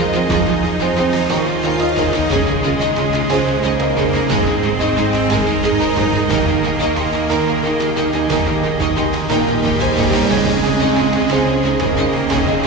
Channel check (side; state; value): both; normal; correlation 0.37